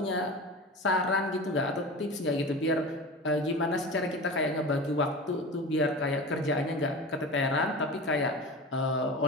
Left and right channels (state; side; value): normal; both; correlation 0.32